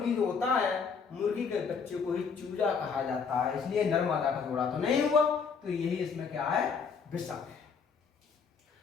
जो होता है मुर्गी के बच्चे को ही चूजा कहा जाता है, इसलिए नर्मदा का जोड़ा तो नहीं हुआ, तो यही इसमें क्या है विषम है।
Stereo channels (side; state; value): right; quieter; 5.8 dB